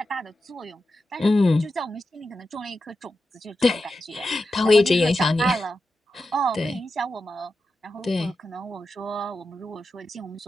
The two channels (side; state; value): both; normal; correlation 0.90